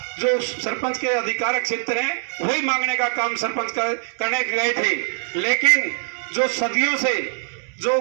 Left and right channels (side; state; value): left; silent; 58 dB below the other